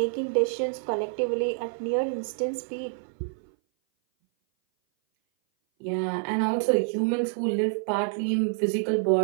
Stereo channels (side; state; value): left; silent; 57 dB below the other